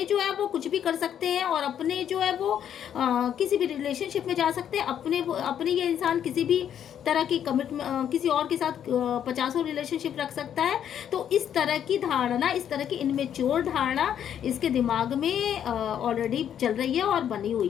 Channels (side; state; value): right; quieter; 9.4 dB